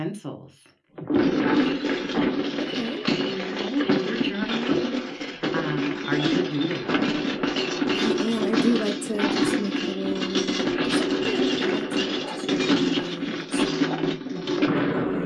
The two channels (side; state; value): both; identical; correlation 1.00